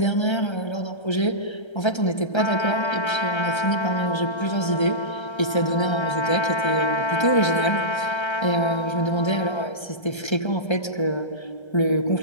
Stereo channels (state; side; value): late; right; 1.3 ms